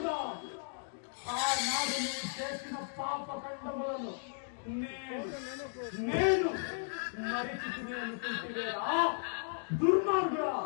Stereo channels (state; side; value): silent; right; digital silence